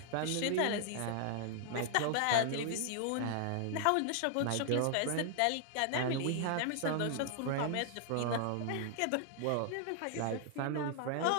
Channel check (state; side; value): different; both; correlation 0.00